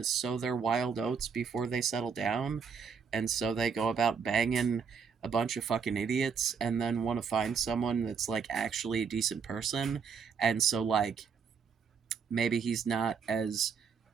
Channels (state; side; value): quieter; left; 6.2 dB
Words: sow their wild oats before they settle down, and so they go about banging a bunch of fucking idiots and then want to find someone that's like actually a decent person, and so like maybe he's not as